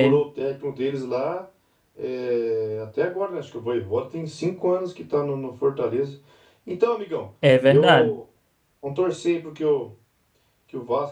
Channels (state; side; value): identical; both; correlation 1.00